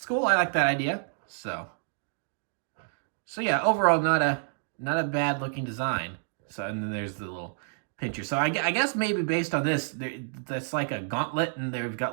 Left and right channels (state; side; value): silent; left; digital silence